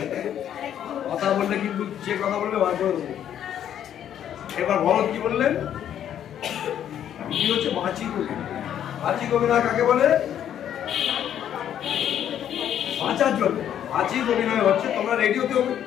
কথা বললে কিন্তু যে কথা বলবে বার করে দেবো। এবার ভরত কি বললেন, কি হচ্ছে বাচিক অভিনয়। বাচিক অভিনয় কাকে বলে? বাঁচার জন্য বাচিক অভিনয় হচ্ছে, তোমরা রেডিওতে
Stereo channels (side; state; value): right; quieter; 10.1 dB